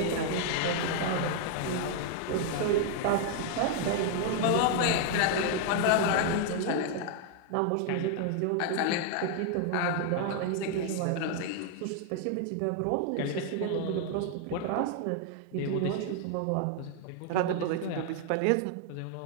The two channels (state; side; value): different; both; correlation 0.00